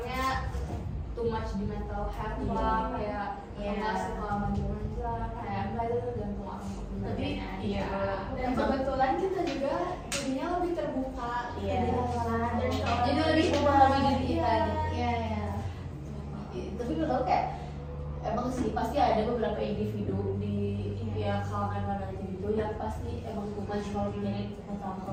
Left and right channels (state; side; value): identical; both; correlation 1.00